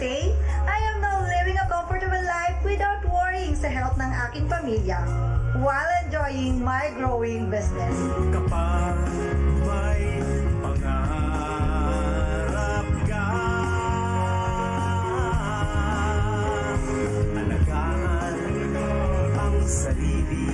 I am now living a comfortable life without worrying sa health ng aking pamilya while enjoying my growing business. Kapag may pangarap ka, alagaan ang sarili,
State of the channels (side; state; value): both; identical; correlation 1.00